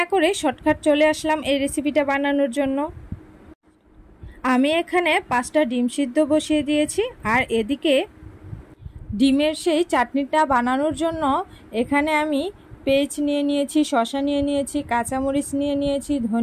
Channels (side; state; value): both; identical; correlation 1.00